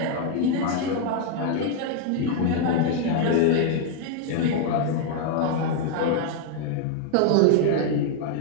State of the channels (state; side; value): different; both; correlation 0.00